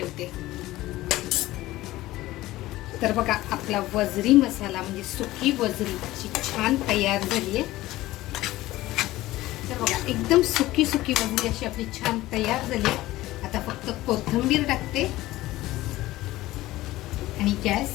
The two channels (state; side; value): quieter; right; 17.1 dB